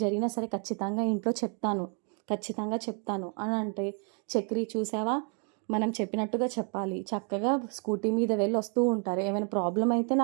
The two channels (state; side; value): quieter; left; 39.5 dB